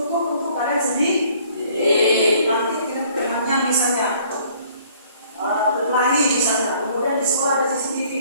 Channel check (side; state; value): both; inverted; correlation -0.58